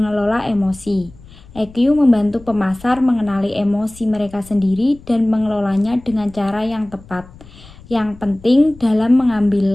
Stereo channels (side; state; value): left; noise; rumble, 22 dB below the sound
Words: emosi. EQ membantu pemasar mengenali emosi mereka sendiri dan mengelolanya dengan cara yang tepat. Yang penting dalam